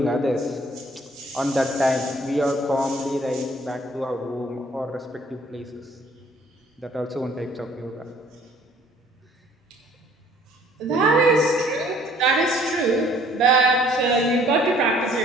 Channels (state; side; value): normal; both; correlation 0.57